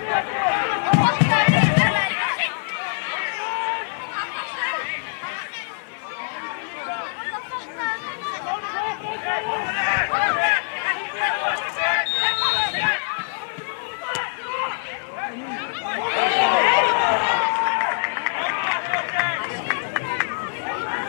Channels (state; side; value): silent; right; digital silence